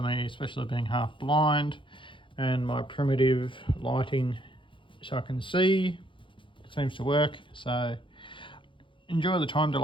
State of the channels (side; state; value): right; late; 0.24 ms